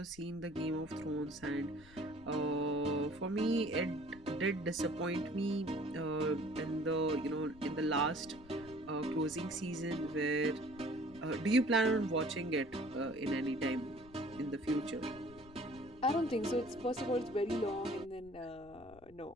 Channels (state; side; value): noise; left; rumble, 22 dB below the sound